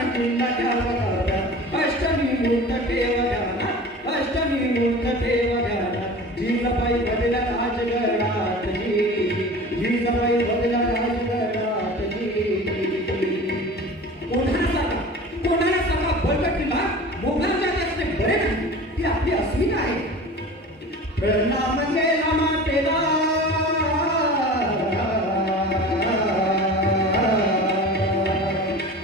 अष्टमी मूर्त ठेव ध्याना जिजाबाई बदला राजगडात जिजाबाई बदला राजगडात कोणाला सगळा बळकटीला मोगलांच्या जास्त बरे नाही ती आपली अस्मिता आहे. प्रणाम केला मातेला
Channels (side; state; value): both; normal; correlation 0.37